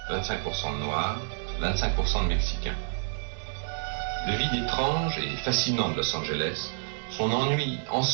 25% de noirs, 25% de mexicains. Le vide étrange et fascinant de Los Angeles, son ennui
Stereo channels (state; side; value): silent; left; digital silence